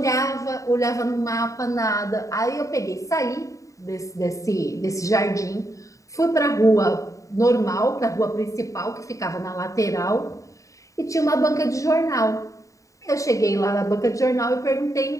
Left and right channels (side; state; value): right; late; 0.16 ms